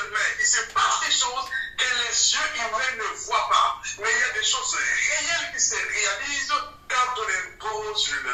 main, il se passe des choses que les yeux humains ne voient pas. Mais il y a des choses réelles qui se réalisent quand on impose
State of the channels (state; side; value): identical; both; correlation 1.00